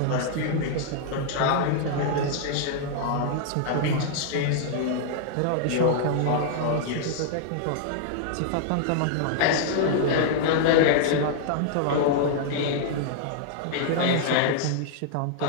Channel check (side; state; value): both; different; correlation -0.01